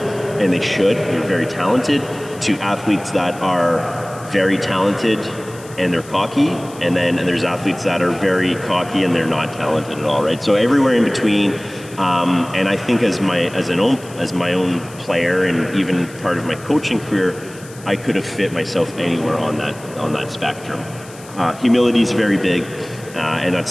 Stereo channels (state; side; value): noise; left; hiss, 20 dB below the sound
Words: they should, they're very talented, to athletes that are very talented and they're cocky, and there's athletes that are very cocky and they're not talented at all, right? So everywhere in between, and I think as my own player and even part of my coaching career, I could have fit myself anywhere on that spectrum. Humility is very big, and that's